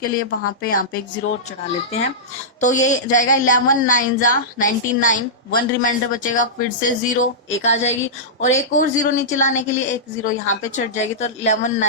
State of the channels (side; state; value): both; normal; correlation -0.14